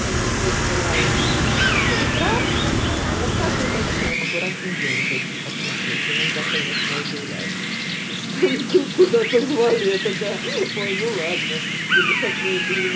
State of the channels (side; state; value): both; identical; correlation 1.00